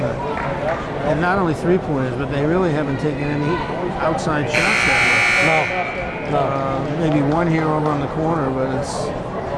And not only 3-pointers, but they really haven't taken any outside shots that No. much. Maybe one here over on the corner, but it's,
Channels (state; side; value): identical; both; correlation 1.00